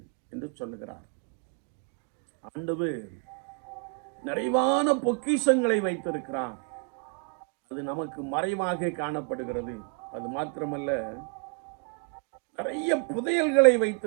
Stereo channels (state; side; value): quieter; left; 35.6 dB